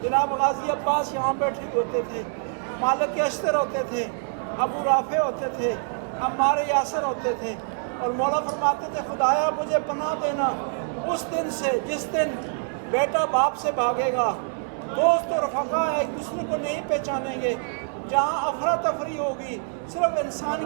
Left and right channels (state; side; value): silent; left; 61 dB below the other